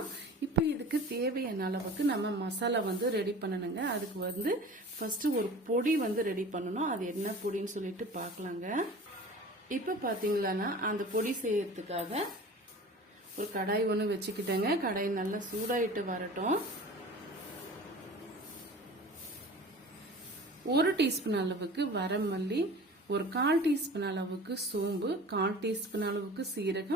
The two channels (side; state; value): both; normal; correlation 0.40